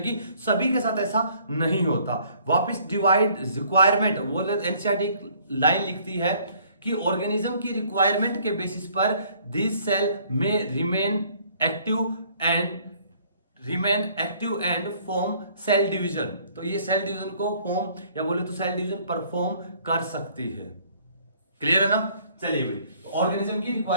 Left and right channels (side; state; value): both; inverted; correlation -0.60